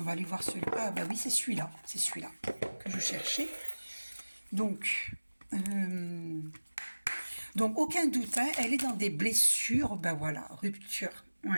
aller voir celui-là. Ah bah oui, c'est celui-là. C'est celui-là que je cherchais. Donc, aucun doute, hein, elle est dans des blessures. Ben voilà, rupture.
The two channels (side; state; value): both; inverted; correlation -1.00